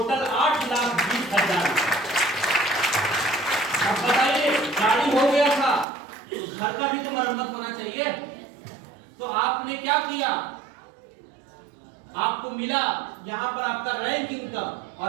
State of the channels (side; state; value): left; drops out; at 5.9 s